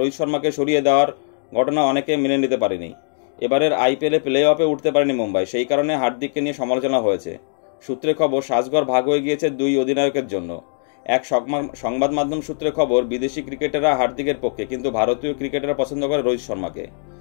শর্মাকে সরিয়ে দেওয়ার ঘটনা অনেকে মেনে নিতে পারেনি। এবারের আইপিএলে প্লে অফে উঠতে পারেনি মুম্বাই, সেই কারণে হার্দিককে নিয়ে সমালোচনা হয়েছে। সূত্রে খবর, সাজঘর ভাগ হয়ে গিয়েছে দুই অধিনায়কের জন্য। এক সংবাদ মাধ্যম সূত্রে খবর, বিদেশি ক্রিকেটাররা হার্দিকের পক্ষে, কিন্তু ভারতীয় ক্রিকেটাররা পছন্দ করে রোহিত শর্মাকে।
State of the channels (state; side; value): silent; right; digital silence